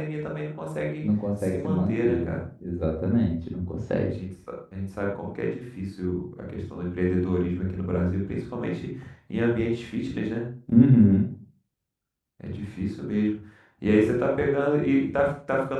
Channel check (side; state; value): both; identical; correlation 1.00